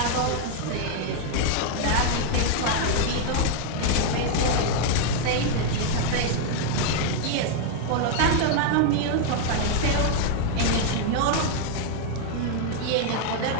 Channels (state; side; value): different; both; correlation 0.00